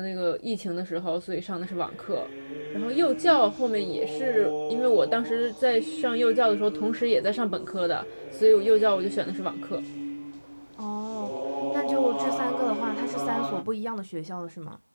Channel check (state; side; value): inverted; both; correlation -1.00